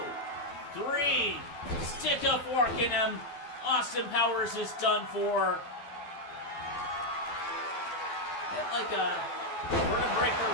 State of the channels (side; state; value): right; late; 12 ms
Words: 3. Stick a fork in him. Austin Powers is done for. Get like a vertebreaker